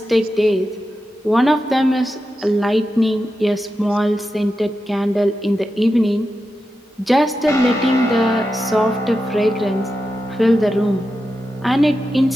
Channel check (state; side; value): normal; both; correlation 0.90